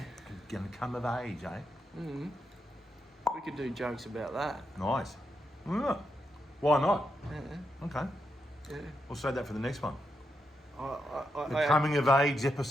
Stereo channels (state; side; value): normal; both; correlation 0.83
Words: Gonna come of age, eh? We could do jokes about that. Nice. Yeah. Why not? Yeah. Okay. Yeah. We'll save that for the next one. The I coming of age